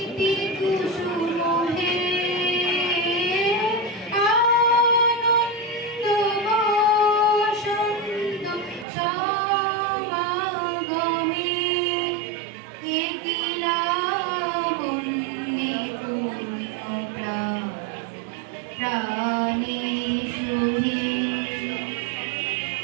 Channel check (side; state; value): left; drops out; at 8.8 s